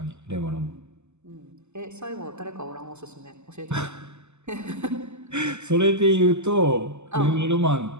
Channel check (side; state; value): left; late; 0.83 ms